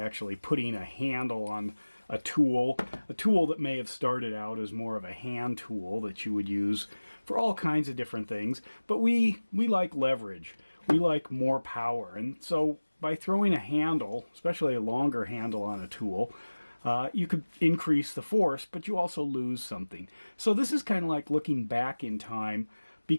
putting a handle on a tool that may have started out as more of a hand tool that you would use for all kinds of different things, but we like leverage, we like more power, and so by throwing a handle, especially a longer handle on a tool, you could increase the force, but you also lose something. So this is kind of like looking back in time,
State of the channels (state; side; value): inverted; both; correlation -1.00